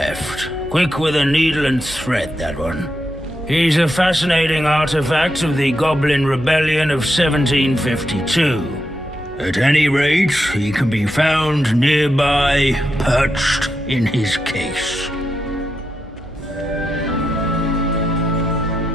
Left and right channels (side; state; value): both; normal; correlation 0.85